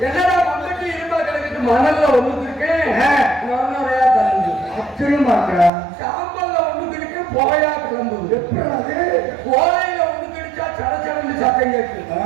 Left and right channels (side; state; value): left; drops out; at 5.7 s